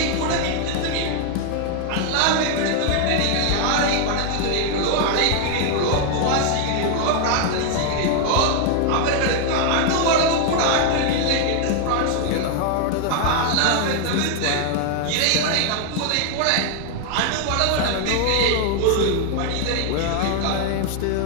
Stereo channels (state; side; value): different; both; correlation 0.00